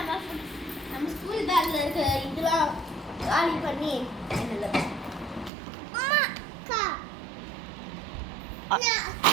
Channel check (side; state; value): left; drops out; at 5.5 s